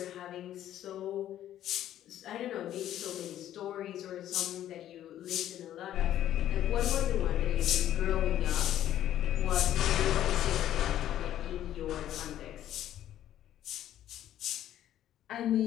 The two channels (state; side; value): quieter; right; 12.0 dB